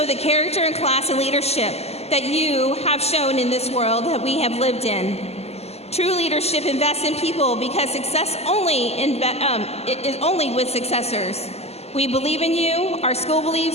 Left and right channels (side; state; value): right; late; 0.30 ms